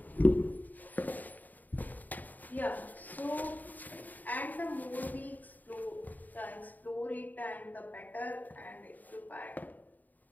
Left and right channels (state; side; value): late; right; 0.083 ms